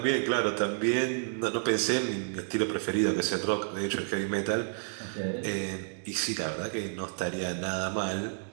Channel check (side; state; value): left; silent; digital silence